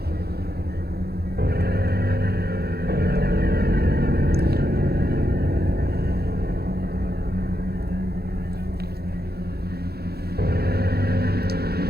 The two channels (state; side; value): late; left; 0.46 ms